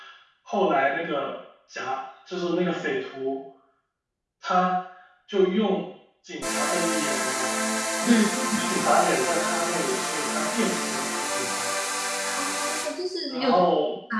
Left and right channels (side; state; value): both; identical; correlation 1.00